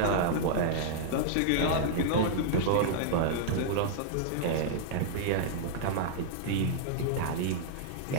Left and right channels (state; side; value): different; both; correlation -0.01